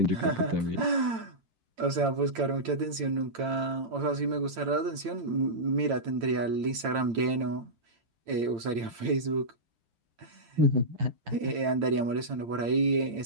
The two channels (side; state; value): left; late; 8.8 ms